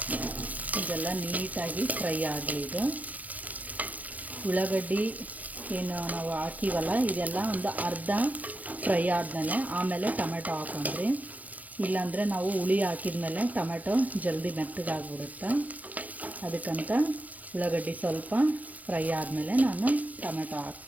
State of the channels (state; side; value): late; left; 0.077 ms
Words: ಇದೆಲ್ಲ ನೀಟಾಗಿ ಫ್ರೈ ಆಗಲಿ. ಇದು ಉಳ್ಳಾಗಡ್ಡಿ ಏನು ನಾವು ಹಾಕಿವಲ್ಲ, ಇದೆಲ್ಲ ಒಂದು ಅರ್ಧ ಫ್ರೈ ಆದಮೇಲೆ ಆಮೇಲೆ ಟೊಮೆಟೊ ಹಾಕೊಂಡ್ರಿ. ಇಲ್ಲಾಂದರೆ ನಾವು ಹುಳಿ ಹಾಕಿದ್ಮೇಲೆ ಟೊಮೆಟೊ ಜಲ್ದಿ ಮೆತ್ತಗಾಗ್ಬಿಡುತ್ತೆ. ಅದಕ್ಕಂತ ಉಳ್ಳಾಗಡ್ಡಿ ಸ್ವಲ್ಪ ಫ್ರೈ ಆದಮೇಲೆ ನಾನು ಟೊಮೆಟೊ